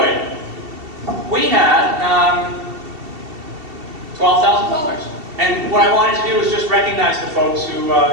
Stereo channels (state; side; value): late; left; 2.7 ms